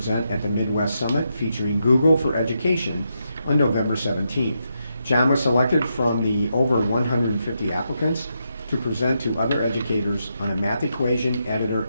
at the Midwest Summit featuring Google for Education on November 17th. John was selected from the over 150 applicants to present to other educators on a math equation editor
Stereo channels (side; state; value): both; inverted; correlation -0.83